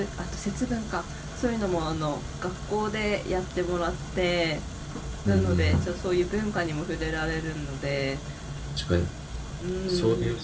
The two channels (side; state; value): both; identical; correlation 1.00